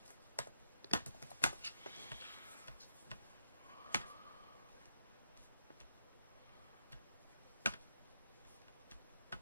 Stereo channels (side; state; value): both; inverted; correlation -0.80